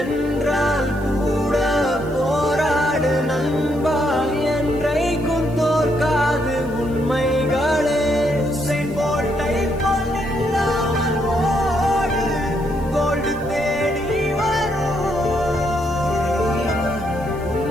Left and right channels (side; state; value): left; noise; hiss, 25 dB below the sound